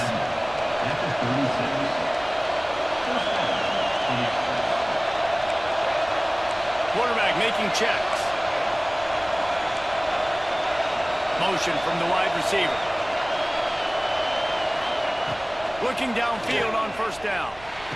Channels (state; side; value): noise; right; rumble, 21 dB below the sound